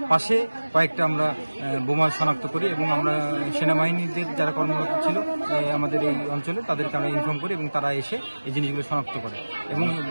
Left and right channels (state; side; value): inverted; both; correlation -1.00